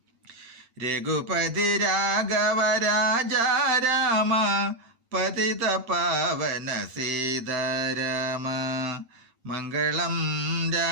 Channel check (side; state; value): left; late; 8.8 ms